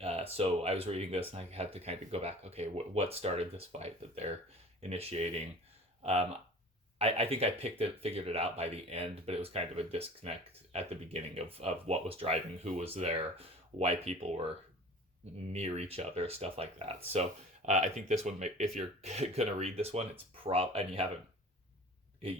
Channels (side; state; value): both; normal; correlation 0.42